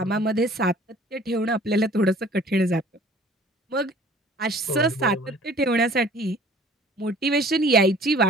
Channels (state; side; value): normal; both; correlation 0.50